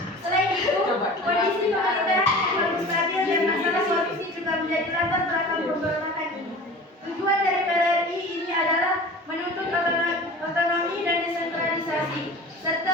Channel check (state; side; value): normal; both; correlation 0.39